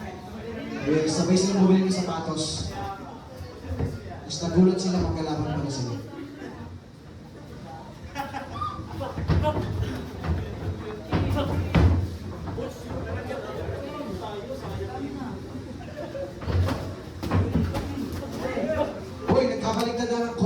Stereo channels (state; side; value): identical; both; correlation 1.00